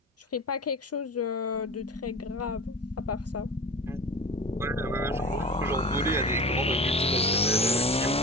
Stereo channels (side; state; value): both; normal; correlation 0.34